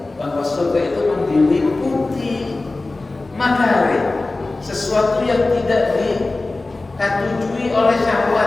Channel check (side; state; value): right; quieter; 3.2 dB